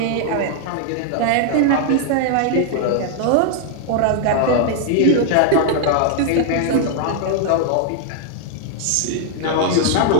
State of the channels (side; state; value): both; different; correlation 0.00